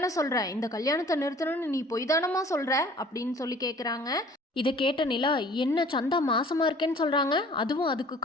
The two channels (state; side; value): normal; both; correlation 0.51